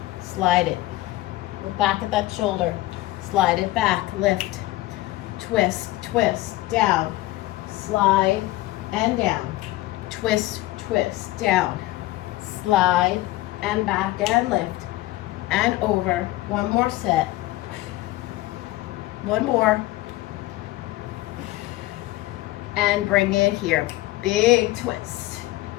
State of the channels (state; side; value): quieter; right; 17.8 dB